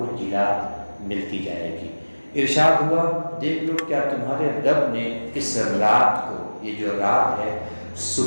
جلا ملتی جائے گی۔ ارشاد ہوا، دیکھ لو کیا تمہارے رب نے اس رات کو، یہ جو رات ہے،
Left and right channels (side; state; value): both; inverted; correlation -1.00